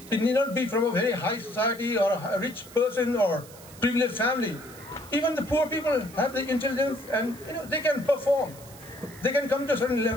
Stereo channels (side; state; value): right; noise; hiss, 20 dB below the sound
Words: need not be from a very high society or a rich person or privileged family. Even the poor people have the intelligence and they can perform. They can come to a certain